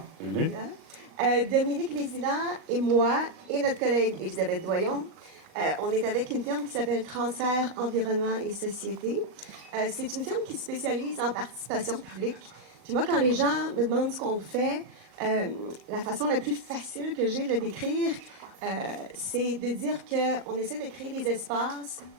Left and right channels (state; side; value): late; left; 38 ms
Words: Bienvenue. Dominique Vézina et moi et notre collègue Elisabeth Doyon, on est avec une firme qui s'appelle Transfert Environnement et Société. C'est une firme qui se spécialise en participation publique. Puis moi, quand les gens me demandent ce qu'on fait, la façon la plus facile que j'ai de le décrire, c'est de dire qu'on essaie de créer des espaces